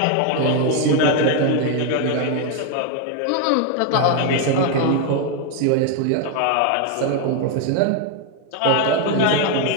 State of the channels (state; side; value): different; both; correlation 0.01